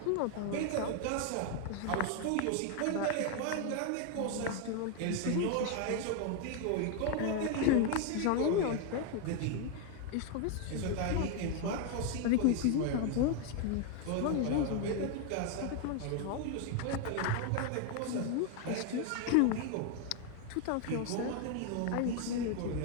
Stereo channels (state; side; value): different; both; correlation 0.01